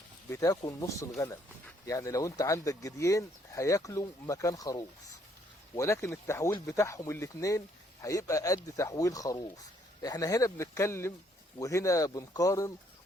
بتاكل نص الغنم. يعني لو انت عندك جديين هياكلوا مكان خروف، ولكن التحويل بتاعهم الاتنين هيبقى قد تحويل خروف. احنا هنا بنتكلم وهنا بنقارن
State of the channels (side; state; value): both; normal; correlation 0.68